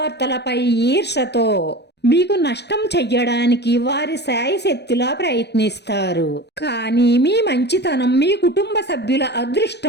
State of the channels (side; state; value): right; late; 0.49 ms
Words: ఈర్షతో మీకు నష్టం చెయ్యడానికి వారి శాయశక్తిలా ప్రయత్నిస్తారు. కానీ మీ మంచితనం మీ కుటుంబ సభ్యుల